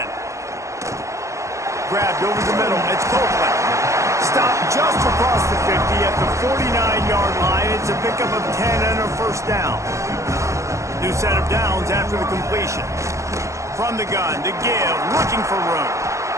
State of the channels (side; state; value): left; late; 0.15 ms